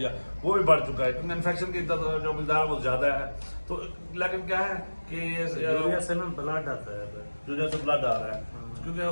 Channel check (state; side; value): inverted; both; correlation -1.00